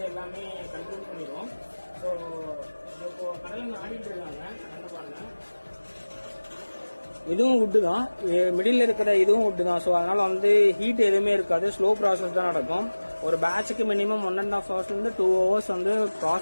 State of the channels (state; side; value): inverted; both; correlation -1.00